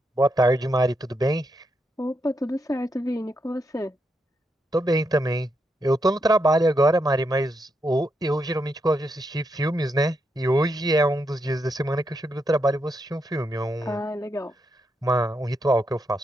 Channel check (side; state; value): both; normal; correlation 0.82